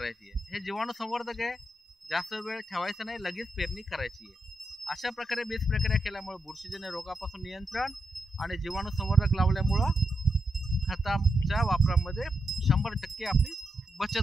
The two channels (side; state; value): both; normal; correlation 0.84